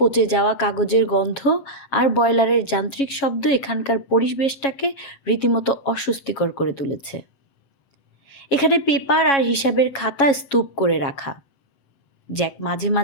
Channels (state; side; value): late; right; 7.3 ms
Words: যাওয়া কাগজের গন্ধ আর বয়লারের যান্ত্রিক শব্দ এখানকার পরিবেশটাকে রীতিমতো অস্বস্তিকর করে তুলেছে। এখানে পেপার আর হিসাবের খাতা স্তূপ করে রাখা। জ্যাক মাঝে